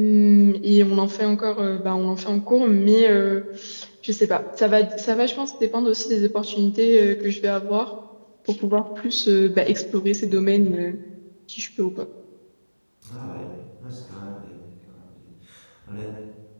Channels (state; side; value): inverted; both; correlation -1.00